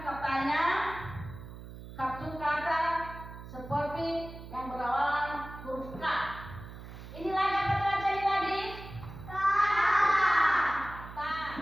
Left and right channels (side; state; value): right; noise; hum, 13 dB below the sound